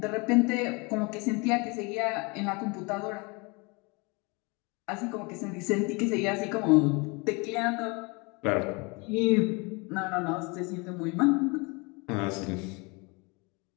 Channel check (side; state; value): right; quieter; 28.8 dB